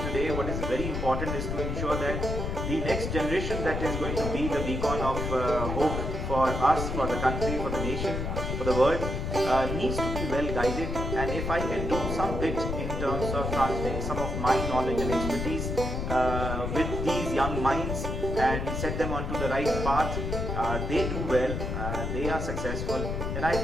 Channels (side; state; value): left; noise; rumble, 2 dB below the sound